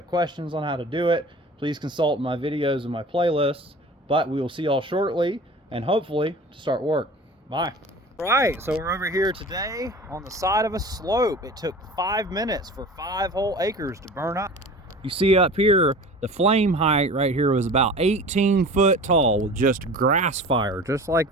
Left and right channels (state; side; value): normal; both; correlation 0.39